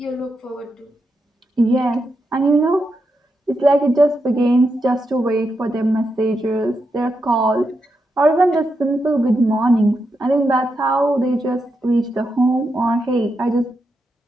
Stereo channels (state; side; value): normal; both; correlation 0.85